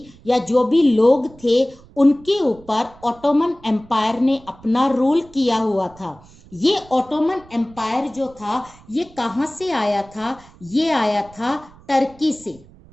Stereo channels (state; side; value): noise; right; rumble, 24 dB below the sound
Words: या जो भी लोग थे उनके ऊपर ऑटोमन एम्पायर ने अपना रूल किया हुआ था। ये ऑटोमन एम्पायर जो था ये कहां से आया था, ये आया था टर्की से।